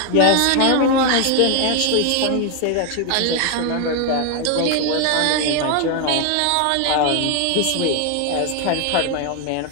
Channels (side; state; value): both; different; correlation 0.01